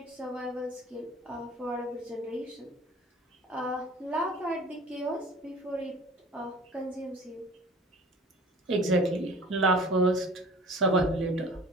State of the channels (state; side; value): normal; both; correlation 0.46